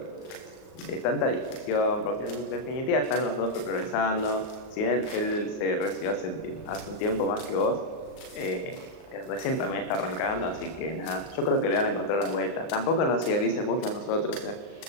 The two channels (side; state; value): right; late; 38 ms